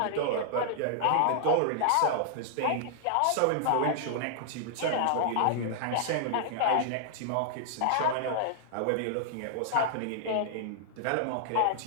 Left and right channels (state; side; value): different; both; correlation -0.01